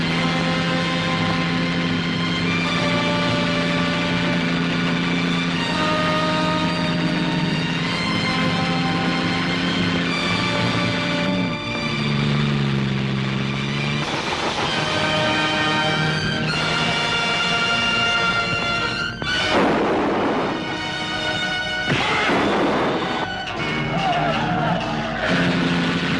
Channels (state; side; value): identical; both; correlation 1.00